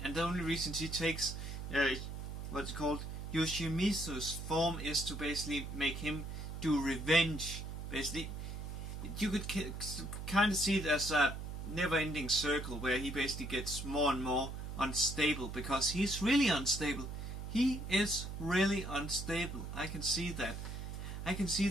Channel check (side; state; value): right; noise; hum, 7 dB below the sound